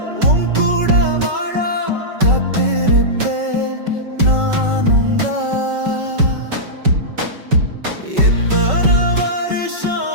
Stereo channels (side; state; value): left; late; 5.3 ms